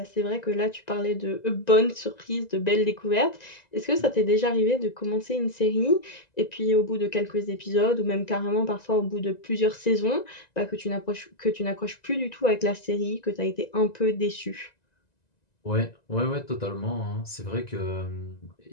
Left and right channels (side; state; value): right; late; 1.9 ms